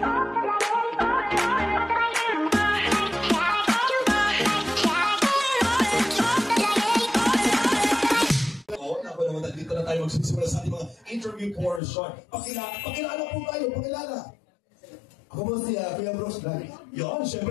dito na tayo magsisimula sa ating mga interview portion. Pakilala po tayo, pakilala. Ako po si Kuya Brooks Vlog. Yan,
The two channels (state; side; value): drops out; right; at 11.8 s